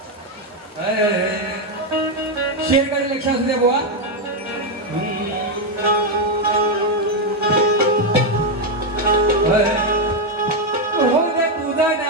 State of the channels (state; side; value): normal; both; correlation 0.04